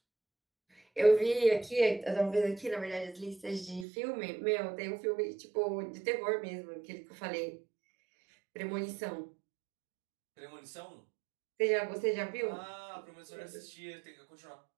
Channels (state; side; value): drops out; left; at 3.9 s